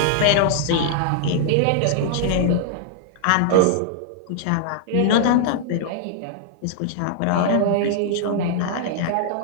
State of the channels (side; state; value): both; different; correlation -0.01